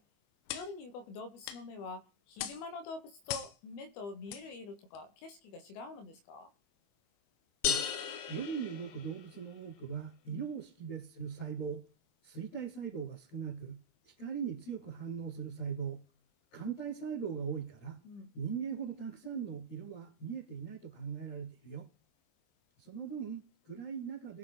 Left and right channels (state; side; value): late; right; 25 ms